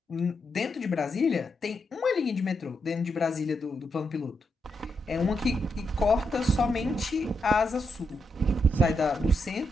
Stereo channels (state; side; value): normal; both; correlation 0.82